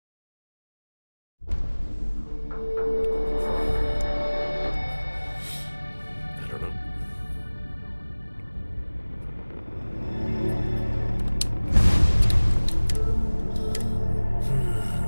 I don't know.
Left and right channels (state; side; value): inverted; both; correlation -1.00